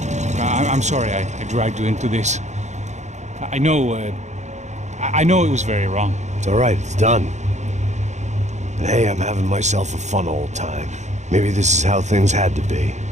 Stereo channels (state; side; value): late; left; 0.34 ms